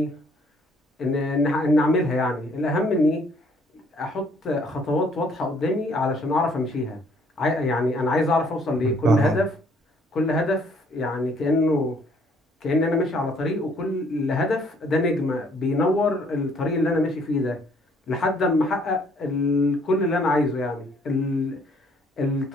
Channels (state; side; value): normal; both; correlation 0.63